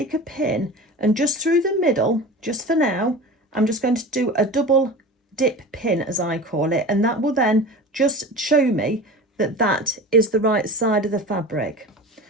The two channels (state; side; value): normal; both; correlation 0.34